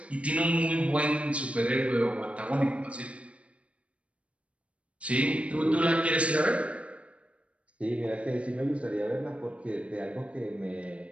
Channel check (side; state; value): left; late; 0.062 ms